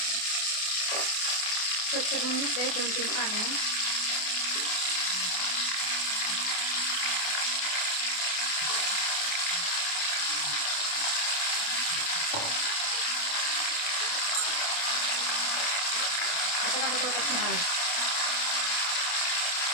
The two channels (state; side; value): late; right; 28 ms